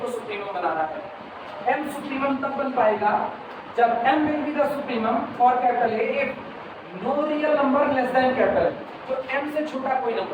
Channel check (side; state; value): both; identical; correlation 1.00